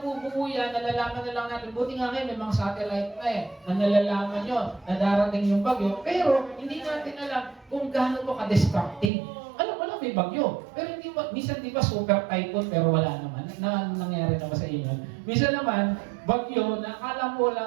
yan, nalalaman na lang natin. Buti nga ngayon, may mga satellite na na nalalaman yun, na darating yung bagyo. Pero hindi natin alam kung gaano ito ka-destructive. Alam mo lang, may bagyo. Pero hindi ba, minsan di ba super typhoon, pero wala naman. Nangyari naman sa inyo. Minsan naman, bagyo, na akala mo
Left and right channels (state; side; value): drops out; left; at 9.1 s